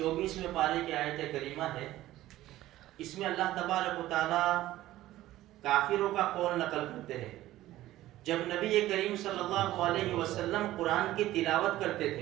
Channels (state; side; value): quieter; left; 15.2 dB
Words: پارے کی آیت کریمہ ہے. اس میں اللہ تبارک و تعالی کافروں کا قول نقل کرتے ہیں. جب نبی کریم صلی اللہ علیہ وسلم قرآن کی تلاوت کرتے